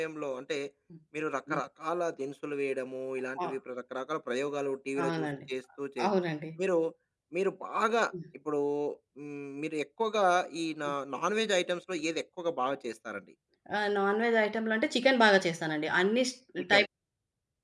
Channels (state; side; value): identical; both; correlation 1.00